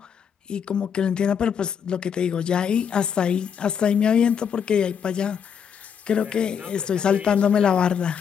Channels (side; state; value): right; quieter; 7.5 dB